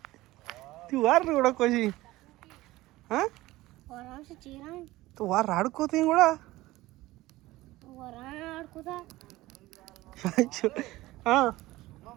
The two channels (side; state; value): left; quieter; 18.1 dB